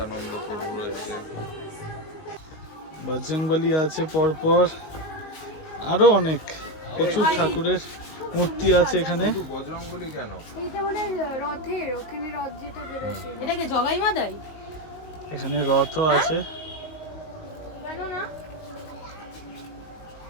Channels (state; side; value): late; right; 19 ms